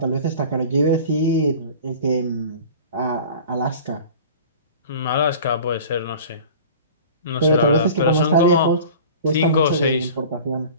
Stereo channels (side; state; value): both; inverted; correlation -0.41